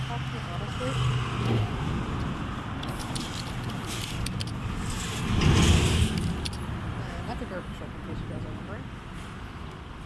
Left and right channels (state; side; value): identical; both; correlation 1.00